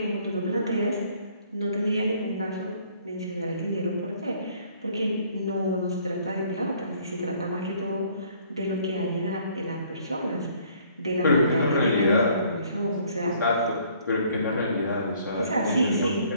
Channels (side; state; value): both; inverted; correlation -0.60